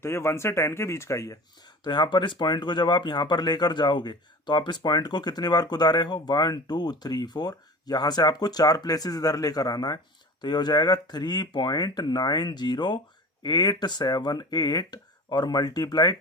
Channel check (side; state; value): both; normal; correlation 0.37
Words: ये 1 से 10 के बीच का ही है। तो यहाँ पर इस पॉइंट को जब आप यहाँ पर लेकर जाओगे तो आप इस पॉइंट को कितनी बार कुदारे हो, 1 2 3 4, यहाँ से आपको 4 प्लेसेस इधर लेकर आना है। तो ये हो जाएगा 3.90878 और मल्टीप्लाई